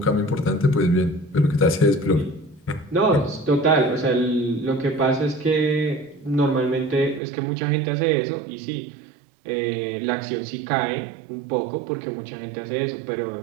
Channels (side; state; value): left; drops out; at 7.2 s